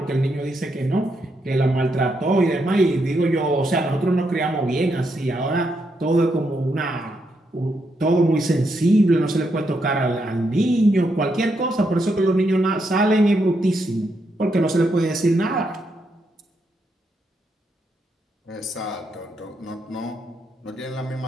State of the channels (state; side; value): normal; both; correlation 0.80